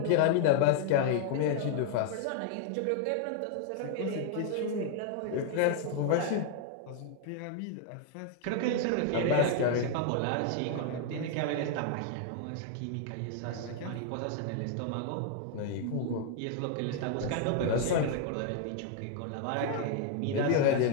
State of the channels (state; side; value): different; both; correlation 0.00